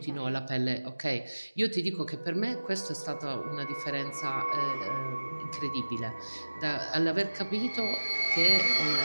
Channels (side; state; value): both; inverted; correlation -1.00